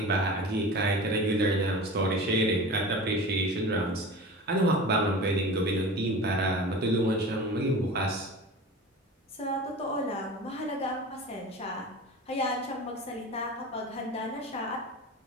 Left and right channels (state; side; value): normal; both; correlation 0.34